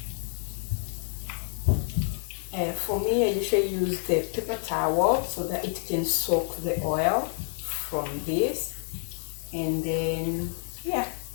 For me, I usually use the paper towel so that it can soak the oil from this, and then yeah,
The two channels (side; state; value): right; silent; 59 dB below the other